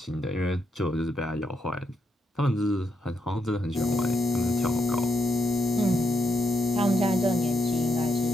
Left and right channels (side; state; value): both; normal; correlation 0.81